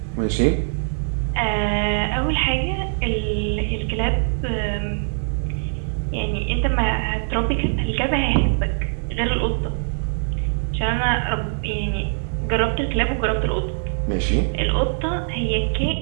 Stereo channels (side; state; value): left; silent; digital silence